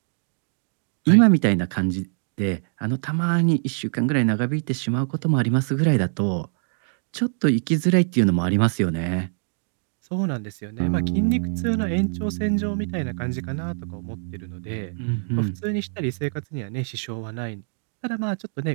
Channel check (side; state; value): left; silent; 59 dB below the other